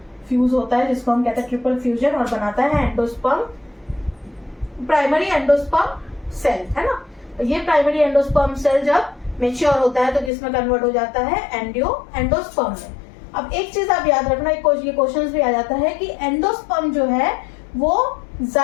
फ्यूज होता है, जिसको हम कहते हैं ट्रिपल फ्यूजन, और बनाता है एंडोस्पर्म, प्राइमरी एंडोस्पर्म सेल, है ना। ये प्राइमरी एंडोस्पर्म सेल जब मेच्योर होता है तो किसमें कन्वर्ट हो जाता है, एंडोस्पर्म में। अब एक चीज आप याद रखना, ये क्वेश्चन भी आ जाता है कि एंडोस्पर्म जो है वो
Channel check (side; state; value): right; drops out; at 10.3 s